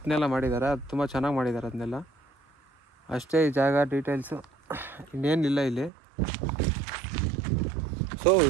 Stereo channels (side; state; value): left; drops out; at 5.9 s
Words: ಎಲ್ಲ ಮಾಡಿದ್ದಾರೆ. ಅದು ತುಂಬ ಚೆನ್ನಾಗಿ ಮಾಡಿದ್ದಾರೆ ಅದನ್ನೆಲ್ಲ. ಅಷ್ಟೇ ಈ ಜಾಗ ಡೀಟೇಲ್ಸು, ಇನ್ನೇನಿಲ್ಲ ಇಲ್ಲಿ. ಸೊ